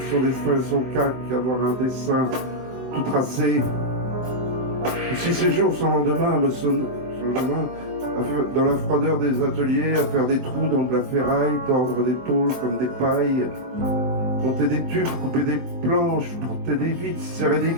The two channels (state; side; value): late; left; 23 ms